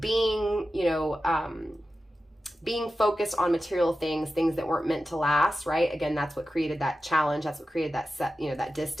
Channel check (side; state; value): both; normal; correlation 0.93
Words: being focused on material things that weren't meant to last, right? Again, that's what created that challenge. That's what created that that